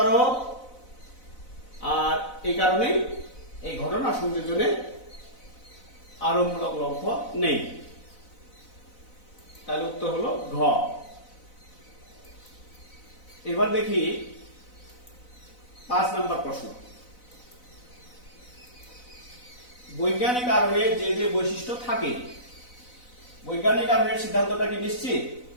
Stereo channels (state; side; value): late; right; 4.0 ms